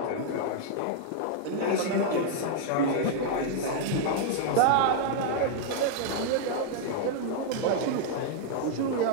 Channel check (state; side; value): different; both; correlation -0.01